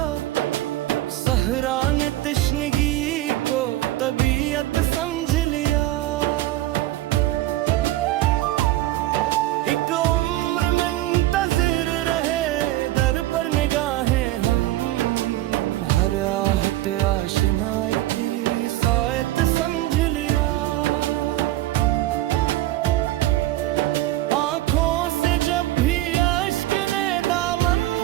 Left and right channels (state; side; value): quieter; left; 16.0 dB